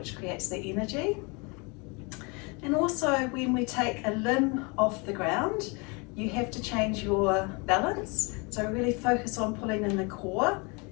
creates the energy. And also when we take a limb off the ground, you have to change your balance. So really focus on pulling in the core,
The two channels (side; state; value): right; quieter; 30.2 dB